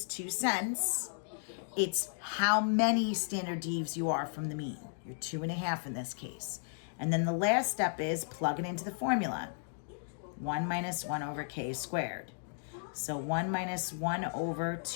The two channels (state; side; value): silent; right; digital silence